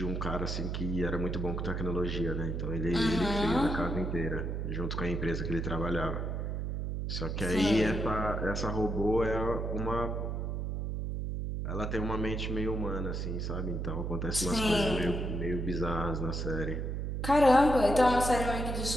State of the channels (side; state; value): right; noise; hum, 2 dB below the sound